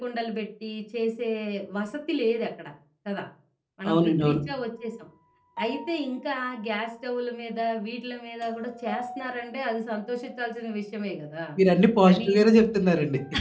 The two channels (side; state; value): both; identical; correlation 1.00